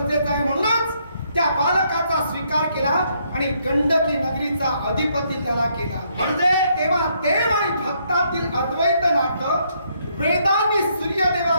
आहे. म्हणूनच त्या बालकाचा स्वीकार केला आणि गंडकी नगरीचा अधिपती त्याला केला. म्हणजे तेव्हा देव आणि भक्तातील अद्वैत नातं वेदांनी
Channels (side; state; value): both; inverted; correlation -0.72